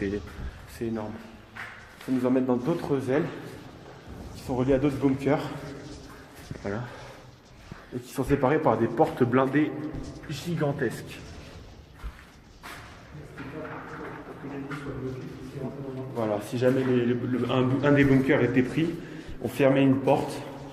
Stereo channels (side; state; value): both; identical; correlation 1.00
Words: énorme. Ça nous emmène dans d'autres ailes qui sont reliées à d'autres bunkers. Voilà. et qui sont séparés par des portes blindées gigantesques. Voilà, si jamais un des bunkers était pris, on fermait une porte